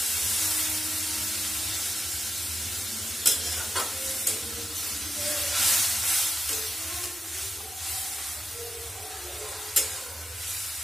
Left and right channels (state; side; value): normal; both; correlation 0.88